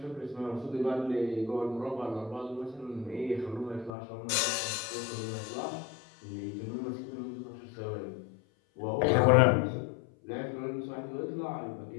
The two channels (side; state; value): right; drops out; at 3.9 s